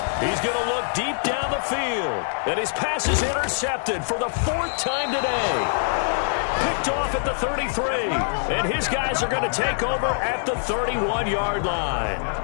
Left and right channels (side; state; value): right; silent; digital silence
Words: He's going to look deep down the field. And his pass is intercepted for the 4th time today. Picked off at the 33. And his guys are going to take over at the 31-yard line.